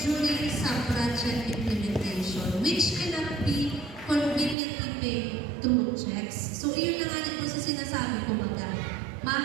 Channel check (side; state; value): left; drops out; at 4.5 s